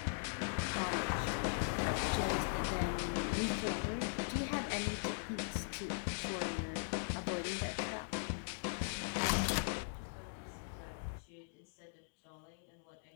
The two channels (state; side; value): silent; right; digital silence